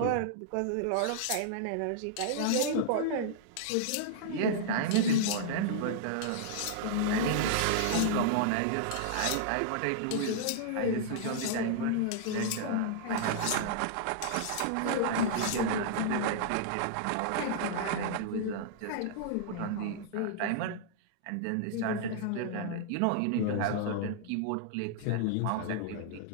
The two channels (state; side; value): different; both; correlation -0.01